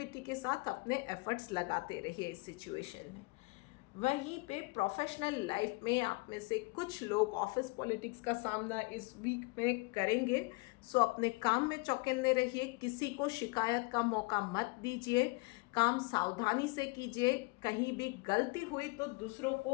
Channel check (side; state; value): right; quieter; 26.7 dB